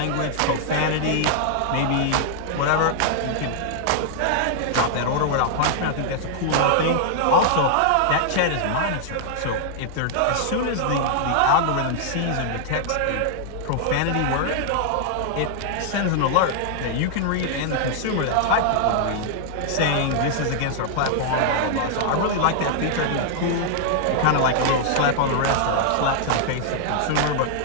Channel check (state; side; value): different; both; correlation -0.01